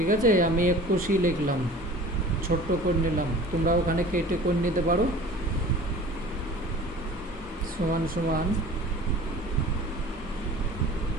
আছে। আমি 21ই লিখলাম, ছোট্ট করে নিলাম, তোমরা ওখানে কেটে করে নিতে পারো। সমান সমান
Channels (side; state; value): both; normal; correlation 0.43